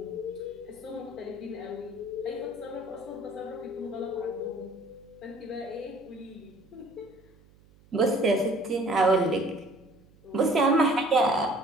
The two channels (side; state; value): right; noise; hum, 27 dB below the sound